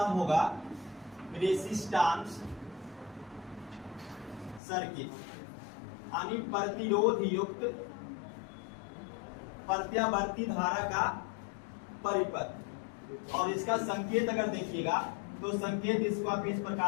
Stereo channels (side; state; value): right; drops out; at 4.6 s